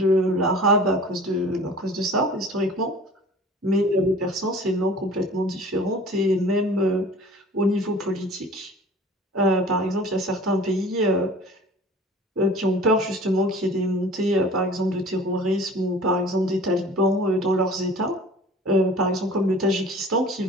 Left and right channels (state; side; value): normal; both; correlation 0.44